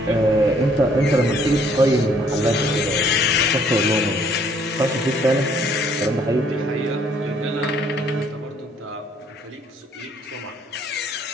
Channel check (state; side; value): normal; both; correlation 0.63